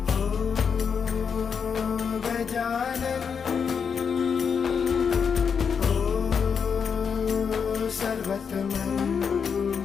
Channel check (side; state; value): right; quieter; 6.5 dB